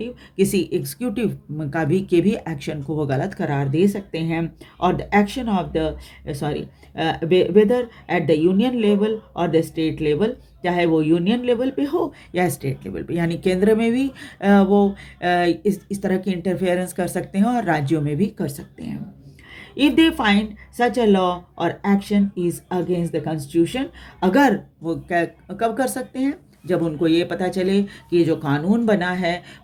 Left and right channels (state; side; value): identical; both; correlation 1.00